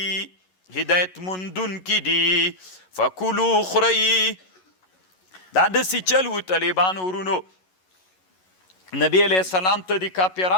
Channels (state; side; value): late; right; 11 ms